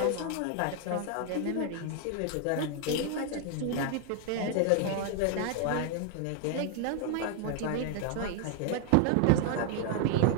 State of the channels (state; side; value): different; both; correlation 0.00